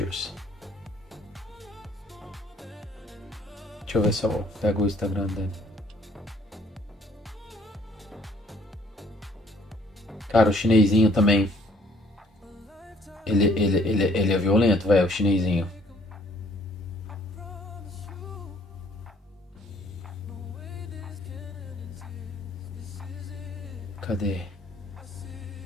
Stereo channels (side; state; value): both; normal; correlation 0.60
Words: Deixa eu ver se eu pego o Instagram dele. Cara, o chinesinho também. Ele é violento, velho, o chinesinho. Cadê?